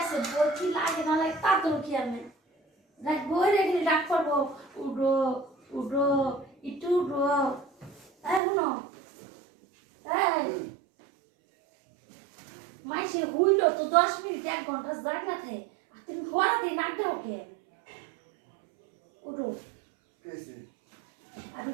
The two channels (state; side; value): drops out; left; at 8.4 s